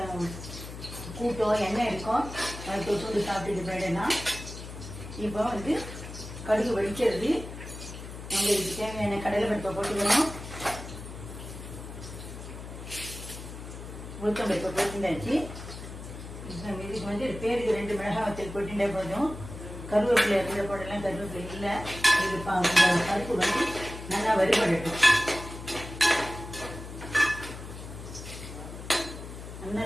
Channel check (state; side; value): noise; left; hum, 11 dB below the sound